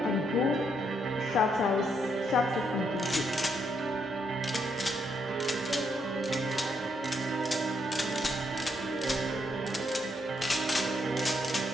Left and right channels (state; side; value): normal; both; correlation 0.76